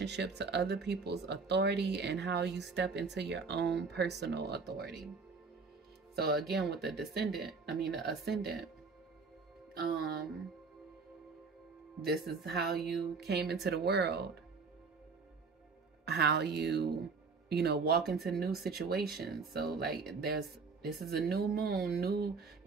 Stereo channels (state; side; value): quieter; left; 4.7 dB